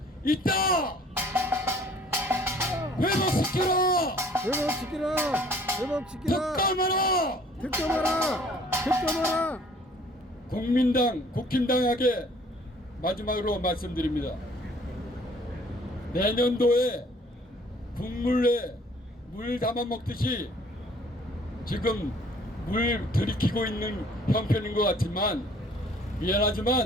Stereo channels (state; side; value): normal; both; correlation 0.56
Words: 있다! 회복시키라! 회복시키라! 회복시키라! 특검하라! 특검하라! 특검하라! 국민당, 국힘당에게 마지막으로 말씀드립니다. 내년도에 국물에 물 담아 먹듯이 지금 물 들이키고 있는 형편인 것 같지만